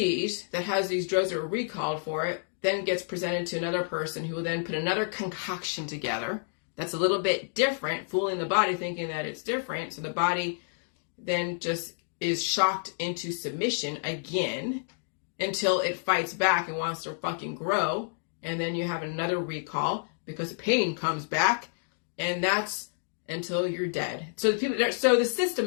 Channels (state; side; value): silent; right; digital silence